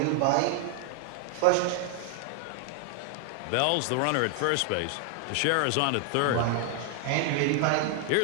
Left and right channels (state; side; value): different; both; correlation 0.00